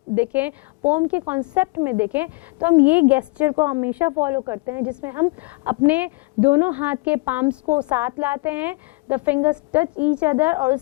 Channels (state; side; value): quieter; right; 25.9 dB